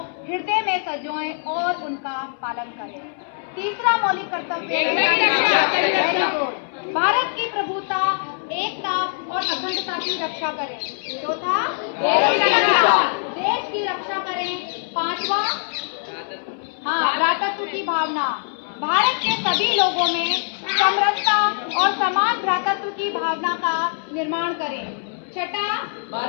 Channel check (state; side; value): silent; right; 64 dB below the other